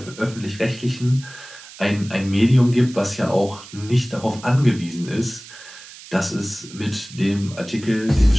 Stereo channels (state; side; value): noise; right; hiss, 17 dB below the sound